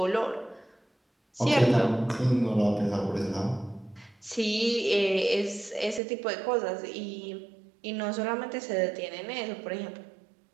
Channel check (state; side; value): drops out; left; at 6.0 s